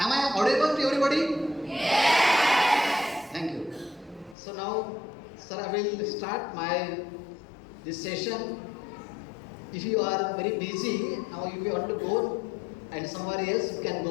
I audible to everybody? Yes. Thank you. So now, sir, I will start this session. If you are very busy, now if you want to go and somewhere else, you can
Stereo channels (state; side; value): drops out; right; at 4.4 s